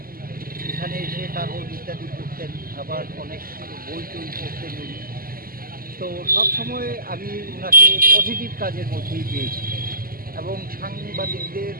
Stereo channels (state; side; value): late; left; 0.42 ms